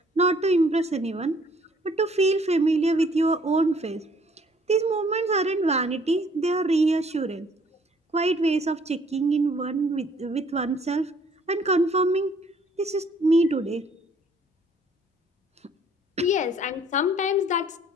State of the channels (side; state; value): both; normal; correlation 0.60